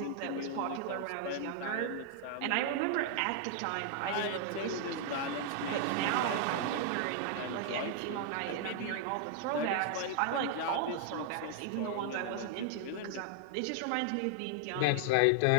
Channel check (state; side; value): different; both; correlation -0.01